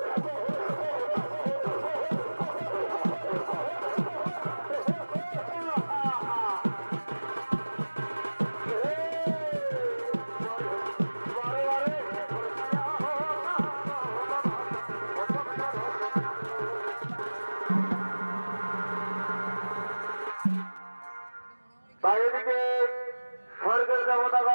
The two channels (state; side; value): inverted; both; correlation -1.00